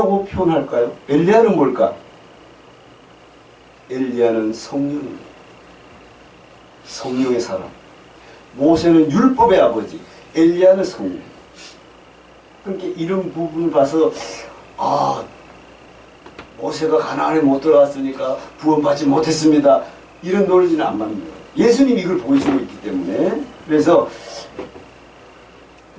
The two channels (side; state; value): both; identical; correlation 1.00